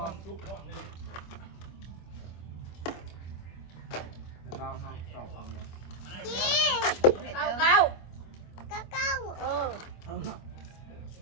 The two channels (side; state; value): right; late; 25 ms